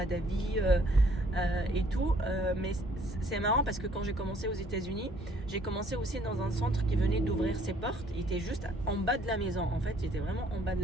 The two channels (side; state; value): both; normal; correlation 0.62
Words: d'avis et tout, mais c'est marrant parce que quand j'ai commencé aux États-Unis, j'ai commencé aussi dans un centre qui venait d'ouvrir ses portes. Il était juste en bas de la maison, en fait, il était vraiment en bas de